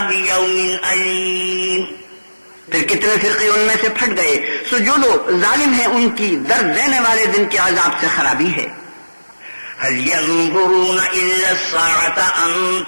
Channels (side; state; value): both; inverted; correlation -1.00